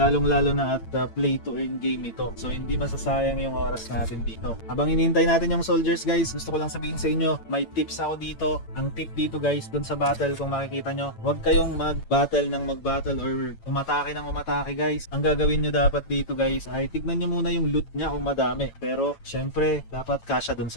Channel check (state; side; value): late; right; 8.9 ms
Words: na at play to earn game ito. So, hindi masasayang yung oras natin dito. Habang inintay natin yung soldiers guys, gusto ko lang sabihin sa inyo, may tips ako dito. Ang tip dito guys, dun sa battle, kung makikita nyo, huwag kayong mag-battle ng mag-battle or umatake ng umatake guys. Ang gagawin nyo dapat dito guys ay tignan nyo muna yung loot nya kung madami. Pero syempre dapat kasya dun